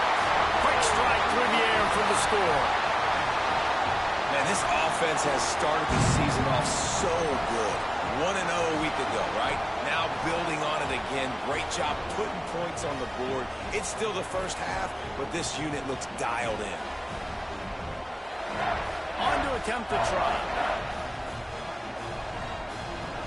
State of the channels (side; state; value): both; identical; correlation 1.00